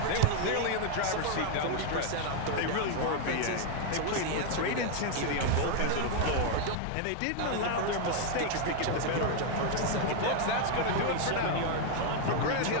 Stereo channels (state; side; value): different; both; correlation 0.00